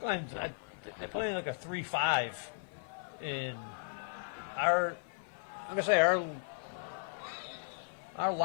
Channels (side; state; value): right; silent; 54 dB below the other